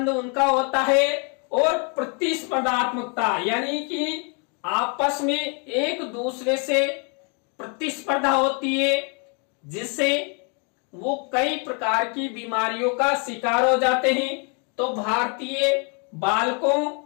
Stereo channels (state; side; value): quieter; right; 36.6 dB